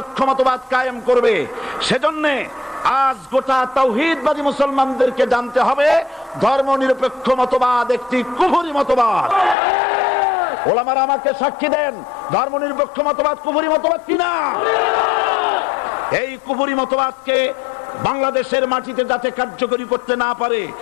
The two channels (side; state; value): right; drops out; at 9.6 s